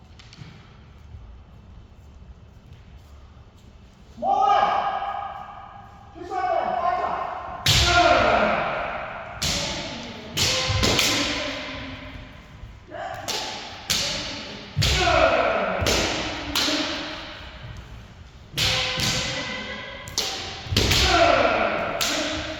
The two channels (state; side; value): identical; both; correlation 1.00